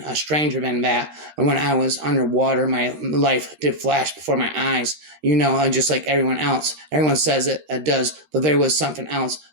stranger than that. When I was underwater, my life did flash before my eyes. Just like everyone else. Everyone says it does, but there was something else,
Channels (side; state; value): left; late; 13 ms